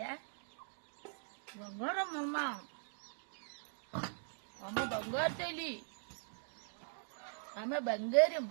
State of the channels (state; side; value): silent; left; digital silence